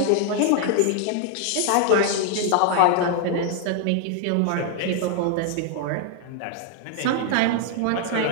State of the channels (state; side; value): different; both; correlation 0.00